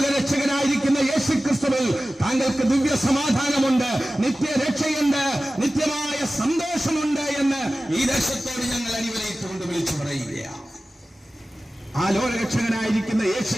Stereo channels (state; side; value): normal; both; correlation 0.96